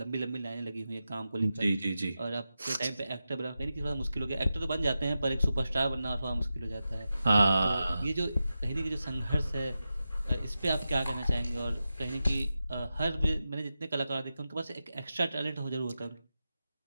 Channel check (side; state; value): both; inverted; correlation -0.91